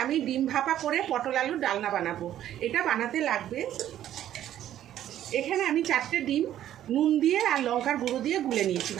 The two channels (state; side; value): quieter; left; 11.8 dB